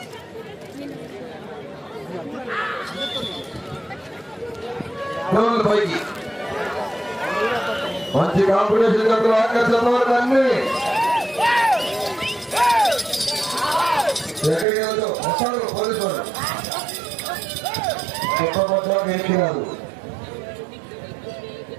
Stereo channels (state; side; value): drops out; left; at 14.7 s